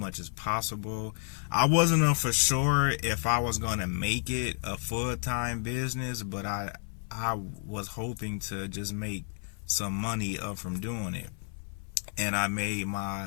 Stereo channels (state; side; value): silent; right; 57 dB below the other